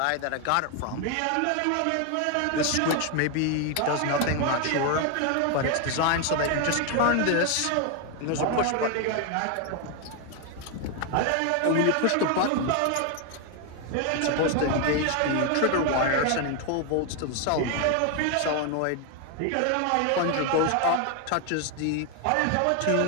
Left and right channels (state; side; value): different; both; correlation 0.01